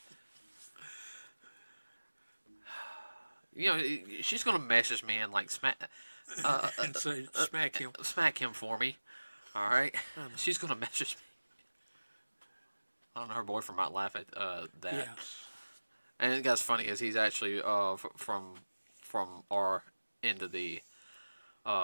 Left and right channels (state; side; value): inverted; both; correlation -1.00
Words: She's gonna message me and like smack. And say, smack him. Smack him for me. All right. She's gonna message me. I don't know. Her boyfriend might laugh at that. Yeah. And it guy's funny is he's actually from our end of the